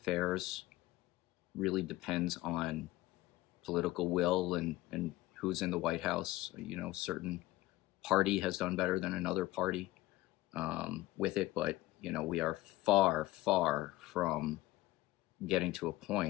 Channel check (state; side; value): quieter; right; 17.5 dB